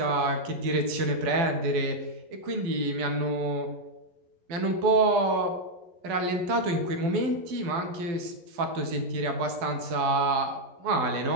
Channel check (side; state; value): left; late; 12 ms